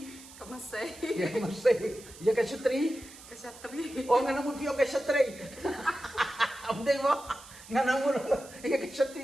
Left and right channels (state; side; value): noise; right; hiss, 18 dB below the sound